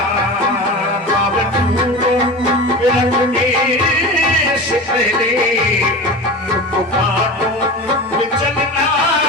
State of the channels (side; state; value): both; normal; correlation 0.30